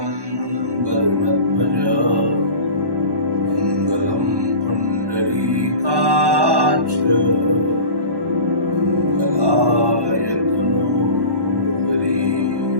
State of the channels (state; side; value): late; left; 1.1 ms